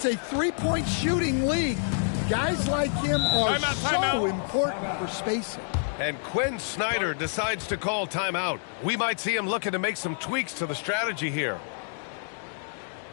a 3-point shooting league. Guys like him are so important for spacing. And Quinn Snyder decides to call timeout. We might see him looking to make some tweaks to the strategy here.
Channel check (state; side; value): silent; right; digital silence